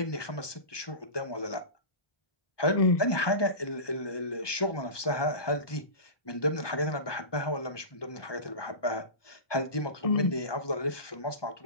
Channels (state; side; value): late; right; 1.2 ms